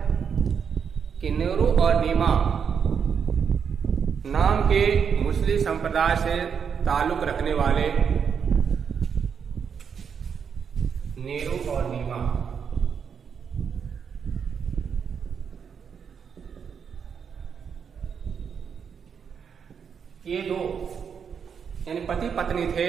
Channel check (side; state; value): left; quieter; 6.9 dB